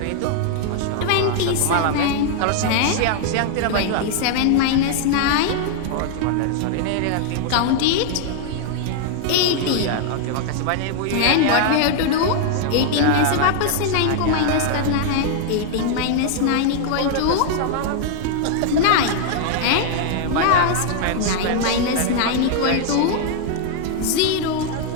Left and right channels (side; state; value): both; different; correlation 0.00